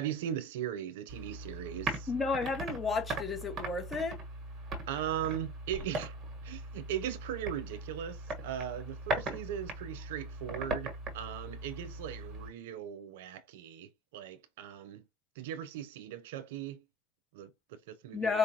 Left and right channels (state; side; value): normal; both; correlation 0.27